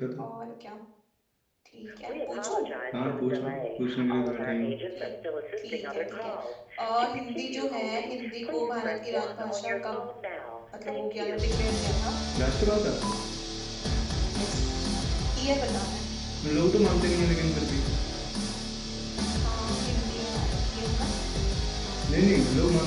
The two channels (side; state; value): both; identical; correlation 1.00